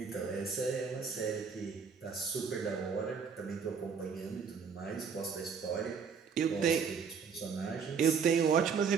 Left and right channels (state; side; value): quieter; left; 6.2 dB